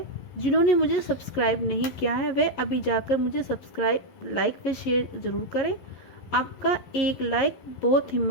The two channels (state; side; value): late; right; 11 ms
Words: जिन्होंने मुझे सब्सक्राइब नहीं किया है, वह अभी जाकर मुझे सब्सक्राइब, लाइक व शेयर ज़रूर करें। आपका एक लाइक बहुत